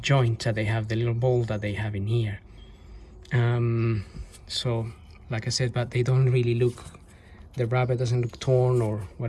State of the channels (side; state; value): both; identical; correlation 1.00